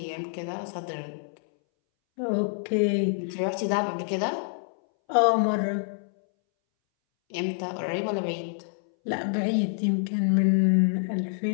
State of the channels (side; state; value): right; silent; 60 dB below the other